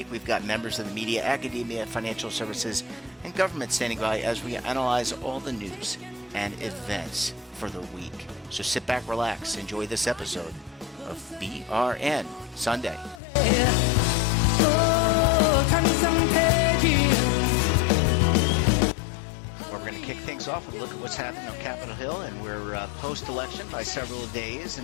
We've got members of the media, academia, financial services, and government standing by as we analyze all the news and events for the week. So sit back, relax, enjoy this episode of BRN Sunday. We're going to kick things off and look at what's happening on Capitol Hill, and we're post-election by several days.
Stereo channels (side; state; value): right; drops out; at 13.2 s